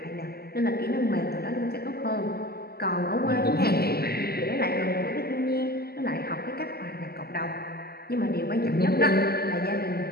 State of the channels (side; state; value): right; late; 0.46 ms